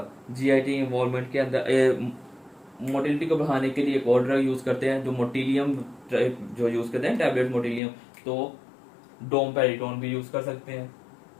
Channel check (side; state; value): right; drops out; at 7.8 s